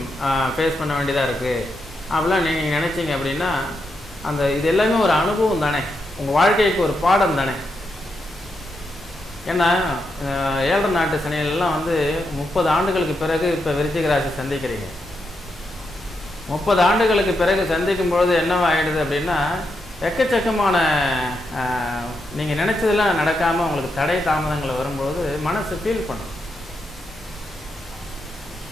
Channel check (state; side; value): normal; both; correlation 0.83